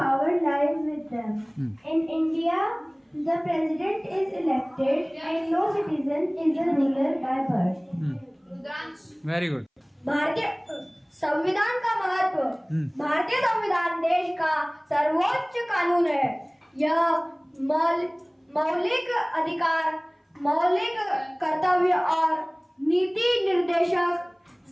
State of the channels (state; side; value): identical; both; correlation 1.00